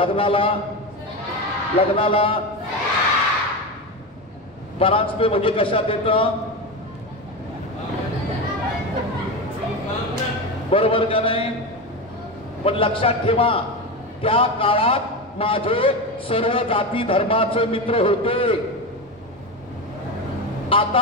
लग्नाला परांजपे म्हणजे कशात येतं, बरोबर का नाही? पण लक्षात ठेवा, त्या काळात माझे सर्व जाती धर्माचे मित्र होते।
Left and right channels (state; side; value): normal; both; correlation 0.19